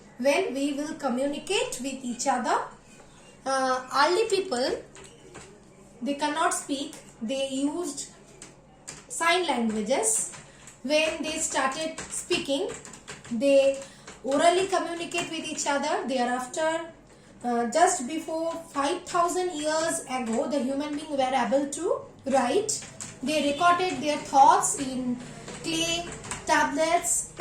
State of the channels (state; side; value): identical; both; correlation 1.00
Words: when we will communicate with each other. Early people, they cannot speak, they used sign languages. When they started speaking, they orally communicate with each other. Thereafter, just before 5,000 years ago, the human beings were able to write. They recorded their thoughts in clay, tablets,